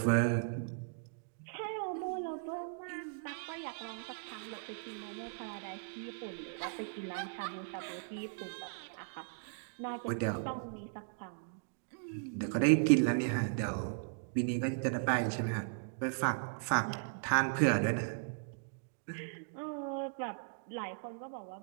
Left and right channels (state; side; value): silent; left; digital silence